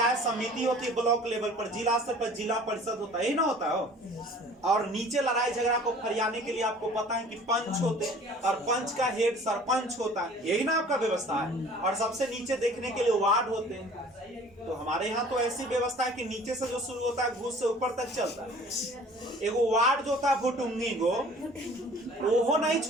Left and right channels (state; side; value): normal; both; correlation 0.48